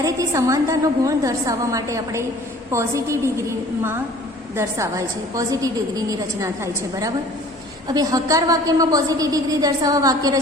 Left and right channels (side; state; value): both; normal; correlation 0.49